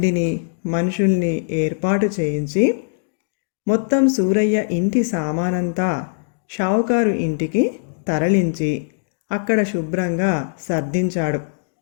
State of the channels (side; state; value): right; silent; digital silence